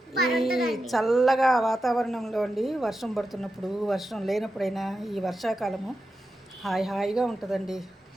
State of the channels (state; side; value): normal; both; correlation 0.89